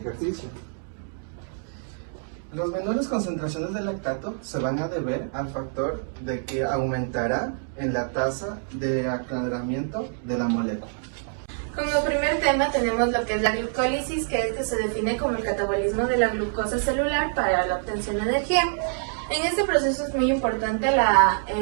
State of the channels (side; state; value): left; silent; digital silence